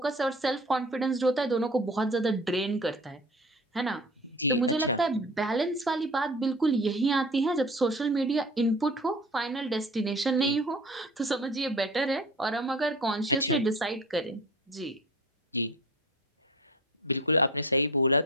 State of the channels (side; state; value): both; normal; correlation 0.39